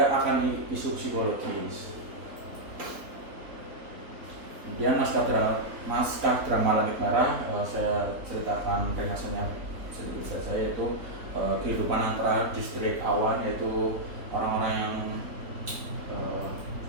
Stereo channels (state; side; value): late; left; 3.8 ms